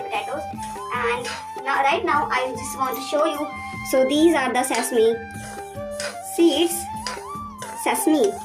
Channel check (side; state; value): both; identical; correlation 1.00